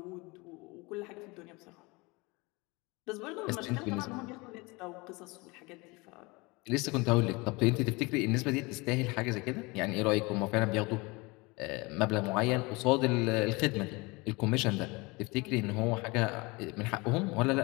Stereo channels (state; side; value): quieter; right; 25.4 dB